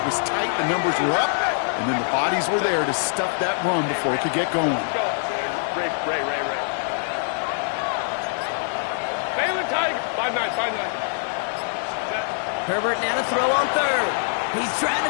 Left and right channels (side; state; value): right; silent; digital silence